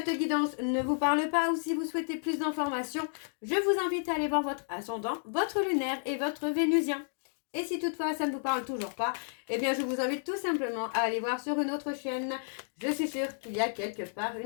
guidance ne vous parle pas ou si vous souhaitez plus d'informations, je vous invite à aller voir votre ascendant, votre lunaire et votre vénusien. Et si toutefois ça ne vous parle toujours pas, eh bien je vous invite tout simplement à aller voir sur une autre chaîne. Je suis sûre qu'il y a quelque part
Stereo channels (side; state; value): right; silent; digital silence